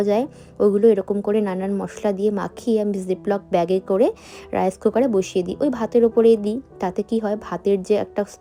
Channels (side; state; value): both; identical; correlation 1.00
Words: যায়, ওগুলো এরকম করে নানান মশলা দিয়ে মাখিয়ে আমি জিপলক ব্যাগে করে রাইস কুকারে বসিয়ে দিই, ওই ভাতের ওপরেই দিই। তাতে কি হয়, ভাতের যে একটা